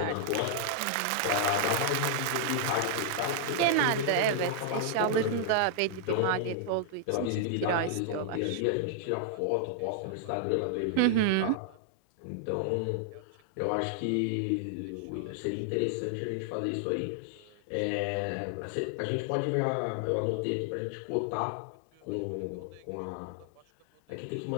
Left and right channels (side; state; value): both; different; correlation 0.00